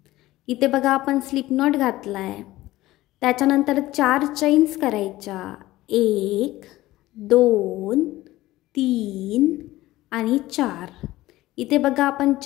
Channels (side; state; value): right; quieter; 17.0 dB